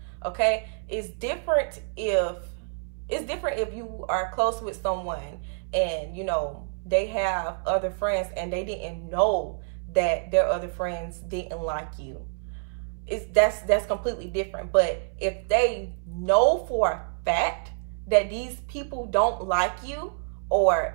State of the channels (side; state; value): left; silent; 59 dB below the other